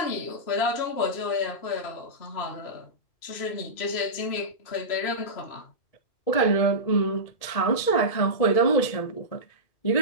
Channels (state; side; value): late; right; 1.8 ms